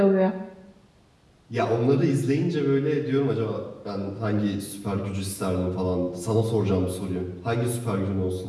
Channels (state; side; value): identical; both; correlation 1.00